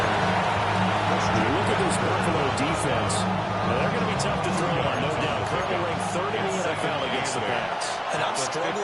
You look at this Buffalo defense. Now they're going to be tough to throw on, no doubt. Currently ranked 3rd in the NFL against the Pats. And I'm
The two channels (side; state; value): both; identical; correlation 1.00